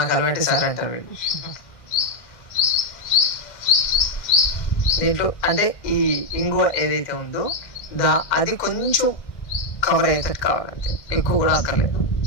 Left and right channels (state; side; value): late; right; 1.6 ms